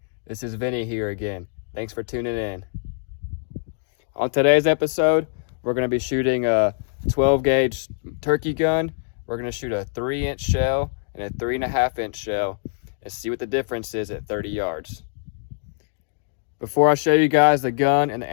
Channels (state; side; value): silent; right; digital silence